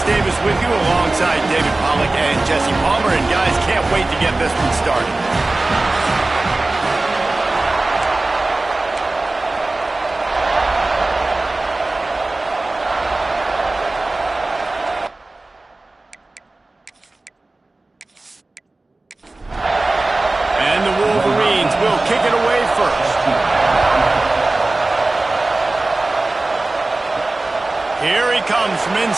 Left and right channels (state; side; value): quieter; left; 3.0 dB